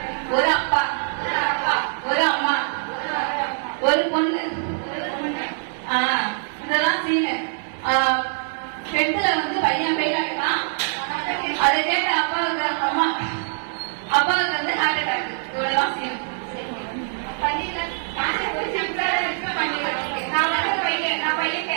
ஒரு அப்பா, ஒரு அம்மா, ஒரு பொண்ணு. இதெல்லாம் சீனு. பெண்ல வந்து பையன் பெயில் ஆகிட்டான். அதை கேட்ட அப்பாவுக்கு அப்பாவுக்கு வந்து ஹார்ட் அட்டாக். இவ்வளவுதான் சீன். நான் பையன்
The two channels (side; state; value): left; silent; digital silence